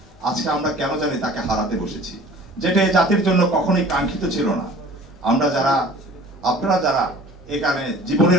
আজকে আমরা কেন জানি তাকে হারাতে বসেছি, যেটা এই জাতির জন্য কখনোই কাঙ্ক্ষিত ছিল না। আপনারা যারা এখানে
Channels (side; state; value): both; normal; correlation 0.47